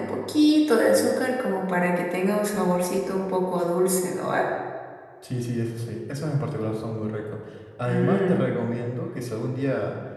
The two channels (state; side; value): identical; both; correlation 1.00